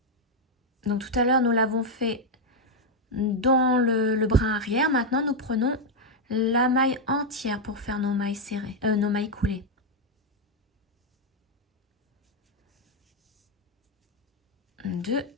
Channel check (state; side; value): normal; both; correlation 0.01